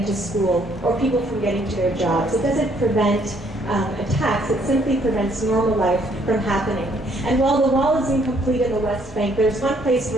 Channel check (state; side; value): normal; both; correlation 0.66